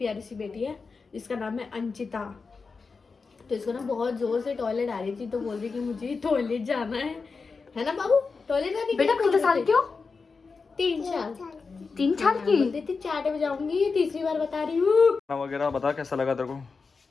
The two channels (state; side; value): quieter; right; 4.6 dB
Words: सी बेटी है, इसका नाम है अंचिता। तो इसको ना बहुत जोर से टॉयलेट आ रही थी, तो बोल रही कि मुझे टॉयलेट जाना है ना बाबू? टॉयलेट जाने बेटा कितने साल क्यों? 3 साल। 3 साल की? बोलती थी 4 बजे जाऊंगी, तीसरी बार बता रही हूँ। खाना वगैरह बता कैसा लगा तेरे को?